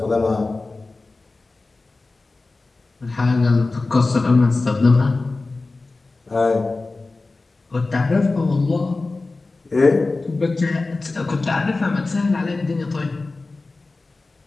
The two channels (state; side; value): quieter; right; 3.5 dB